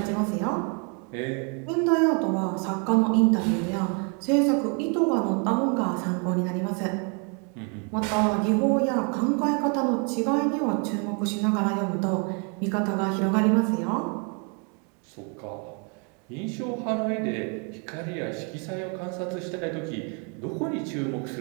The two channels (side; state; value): left; quieter; 36.9 dB